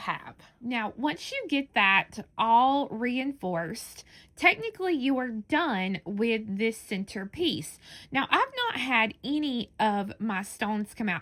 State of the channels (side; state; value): both; identical; correlation 1.00